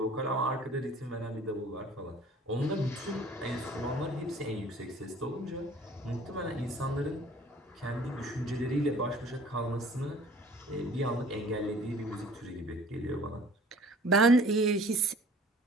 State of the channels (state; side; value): normal; both; correlation 0.50